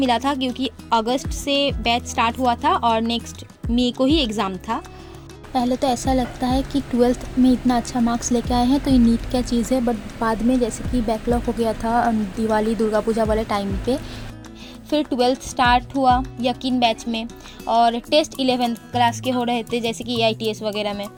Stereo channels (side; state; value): both; identical; correlation 1.00